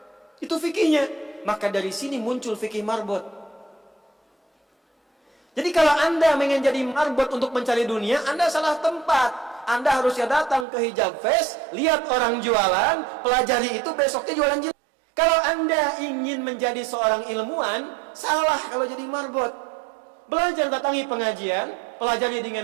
Itu fikihnya. Maka dari sini muncul fikih marbot. Jadi kalau Anda ingin jadi marbot untuk mencari dunia, Anda salah tempat. Anda harusnya datang ke Hijab Fest, lihat orang jualan, pelajari itu, besoknya jualan jilbab. Kalau Anda ingin menjadi seorang ilmuwan, salah kalau jadi marbot. Belajar, datangi pengajian, pelajari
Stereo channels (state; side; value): drops out; left; at 10.7 s